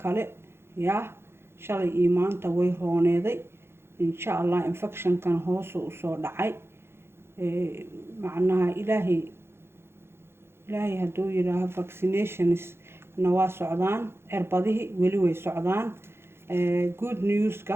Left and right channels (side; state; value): left; late; 0.12 ms